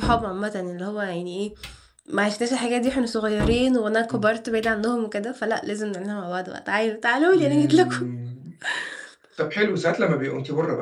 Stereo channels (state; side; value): identical; both; correlation 1.00